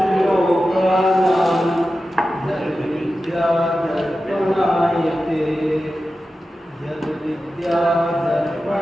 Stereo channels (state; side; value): normal; both; correlation 0.93